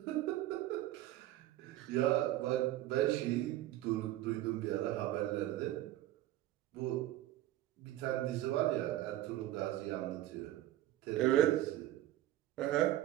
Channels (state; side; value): quieter; left; 14.6 dB